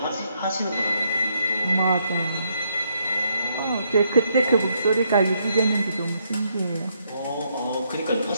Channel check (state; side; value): inverted; both; correlation -0.75